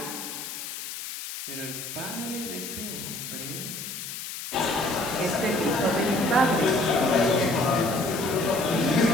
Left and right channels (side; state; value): left; noise; hiss, 8 dB below the sound